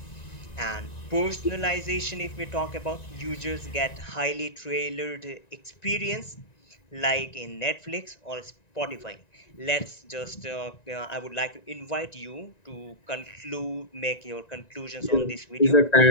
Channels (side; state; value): right; late; 1.9 ms